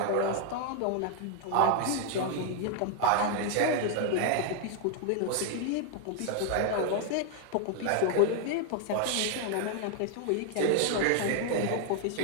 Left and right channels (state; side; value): different; both; correlation 0.00